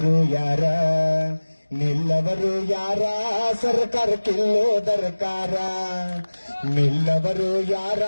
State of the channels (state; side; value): inverted; both; correlation -1.00